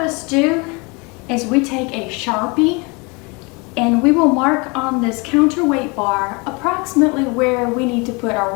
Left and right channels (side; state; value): right; quieter; 28.8 dB